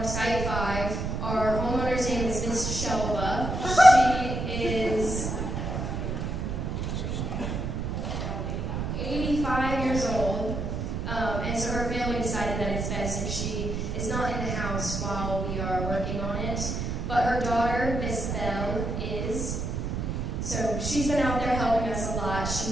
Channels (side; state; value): right; noise; rumble, 2 dB below the sound